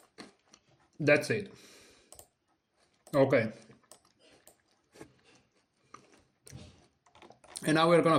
That's it. Okay. And now we're gonna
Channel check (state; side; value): identical; both; correlation 1.00